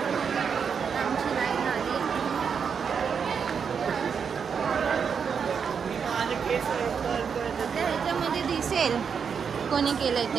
आमची लाईन आली. ह्याच्यामध्ये दिसेल कोणी केलंय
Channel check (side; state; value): left; quieter; 6.6 dB